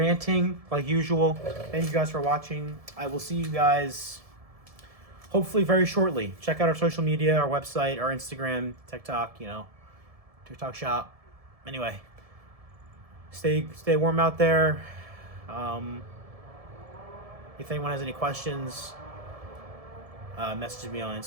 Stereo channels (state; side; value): late; left; 1.7 ms